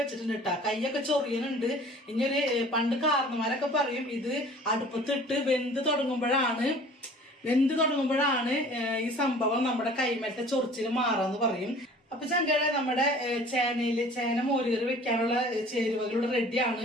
വെച്ചിട്ടുണ്ട് കേട്ടാ. കൈയൊക്കെ ചൊറിയുന്നുണ്ട്. ഇനി ഒരു പണ്ട് കാരണന്മാരൊക്കെ പറയും ഇത് അടുപ്പത്തിട്ട് വെന്ത് തുടങ്ങുമ്പോഴാണ് ഈ സംഭവം നമ്മുടെ കൈമേലത്തെ ചൊറിച്ചിൽ മാറാന്ന് പറയും. അപ്പൊ ചങ്കളെ, നമ്മുടെ ചേന മോരുകറി വെക്കാനുള്ള ചേരുവകളുടെ റെഡിയാണ്.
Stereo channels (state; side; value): normal; both; correlation 0.48